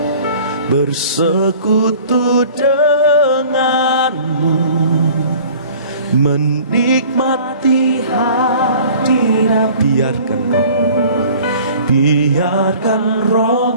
bersekutu denganmu, menikmati hadirat. Biarkan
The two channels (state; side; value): inverted; both; correlation -0.48